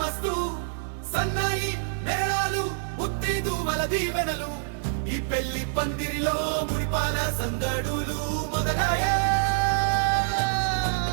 సన్నాయి మేళాలు ముత్తైదువల దీవెనలు ఈ పెళ్లి పందిరిలో మురిపాల సందడులు మొదలయ్యే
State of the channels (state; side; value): silent; left; digital silence